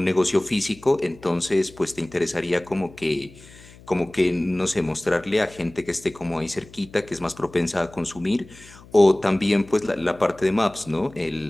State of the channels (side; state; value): left; noise; hum, 22 dB below the sound